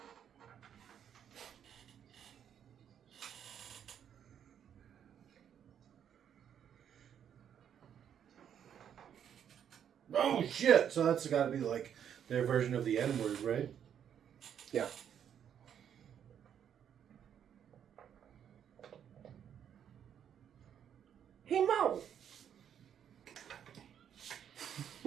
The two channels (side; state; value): left; quieter; 8.9 dB